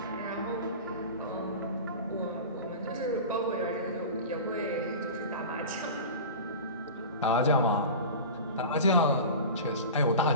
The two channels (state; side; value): inverted; both; correlation -0.32